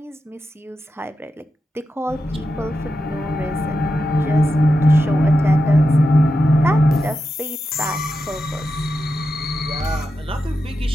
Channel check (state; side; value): normal; both; correlation 0.89